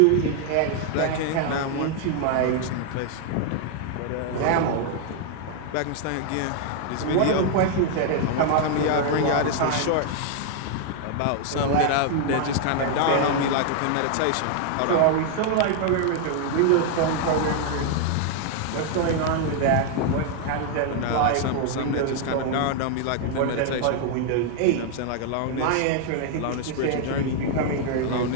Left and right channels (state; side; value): different; both; correlation 0.00